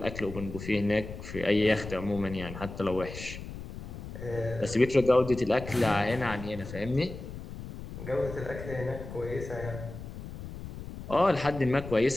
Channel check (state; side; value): noise; left; rumble, 11 dB below the sound